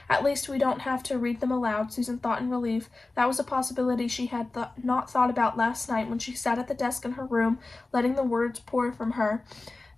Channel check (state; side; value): quieter; right; 3.3 dB